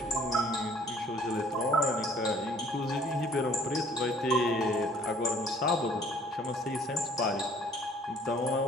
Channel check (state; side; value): normal; both; correlation 0.56